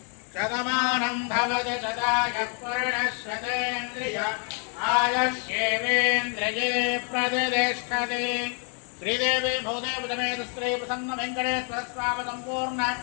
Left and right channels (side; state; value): right; quieter; 39.4 dB